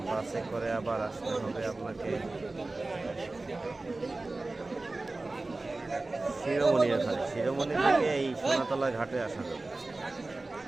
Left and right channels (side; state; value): left; quieter; 3.2 dB